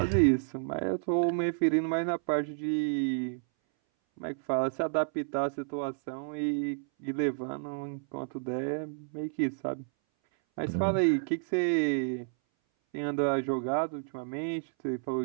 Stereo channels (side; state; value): left; silent; 57 dB below the other